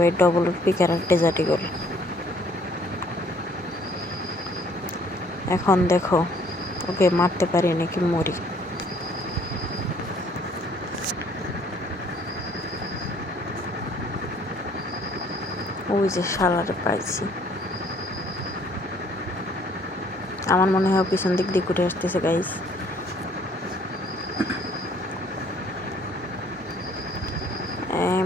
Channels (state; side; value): normal; both; correlation 0.61